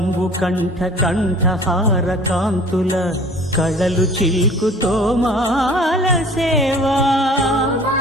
కంఠ కంఠహార కాంతుల కళలు చిల్కు తోమాల సేవా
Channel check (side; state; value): both; normal; correlation 0.48